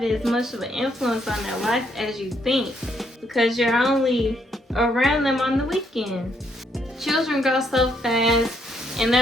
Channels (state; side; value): normal; both; correlation 0.73